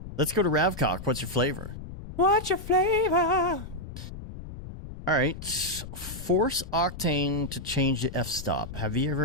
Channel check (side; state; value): left; noise; rumble, 11 dB below the sound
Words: Let's go to Ravcock. What's your flavor? What's your flavor? All right. Force Octane to change the f-stop. Have you